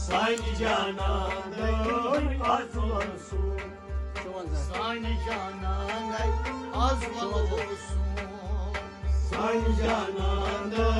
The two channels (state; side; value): identical; both; correlation 1.00